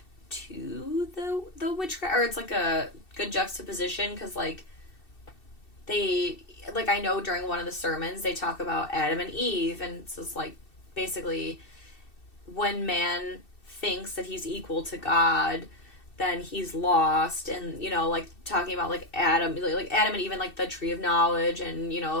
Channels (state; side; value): late; right; 2.7 ms